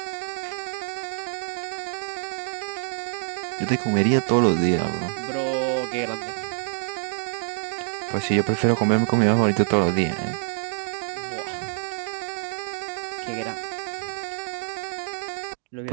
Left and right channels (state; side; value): silent; left; digital silence